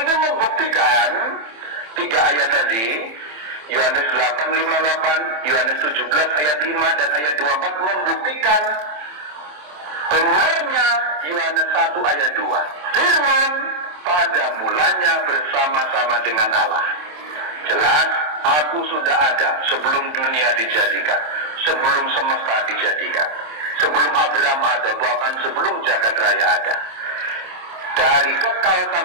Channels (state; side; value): late; left; 27 ms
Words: membuktikan 3 ayat tadi, Yohanes 8:58, Yohanes 17 ayat 5 dan ayat 24 membuktikan benarnya Yohanes 1 ayat 2. Firman pada mulanya bersama-sama dengan Allah. Jelas, aku sudah ada sebelum dunia dijadikan, sebelum semesta dijadikan, sebelum Abraham ada, bahkan sebelum jagat raya ada. Dari kekal